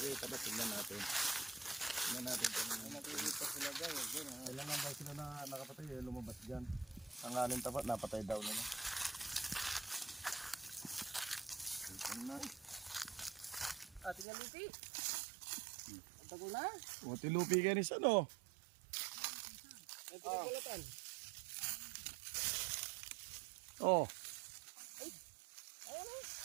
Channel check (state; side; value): drops out; left; at 14.2 s